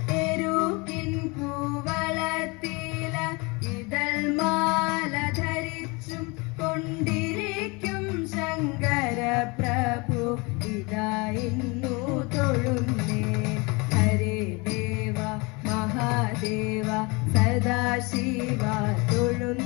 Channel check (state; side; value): quieter; right; 27.6 dB